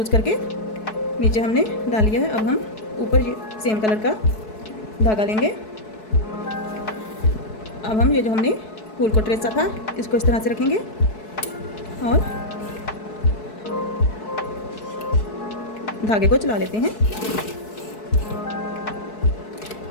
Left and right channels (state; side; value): late; right; 4.7 ms